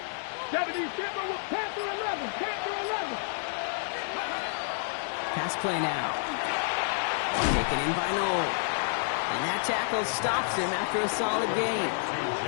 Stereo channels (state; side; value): silent; right; digital silence